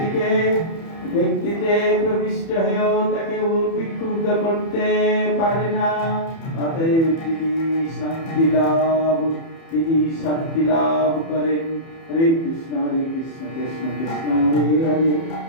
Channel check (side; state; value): right; late; 30 ms